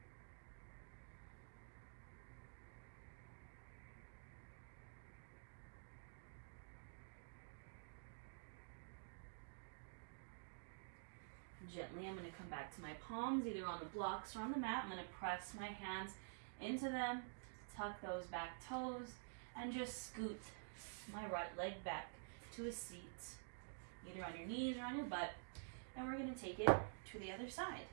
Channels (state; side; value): silent; left; digital silence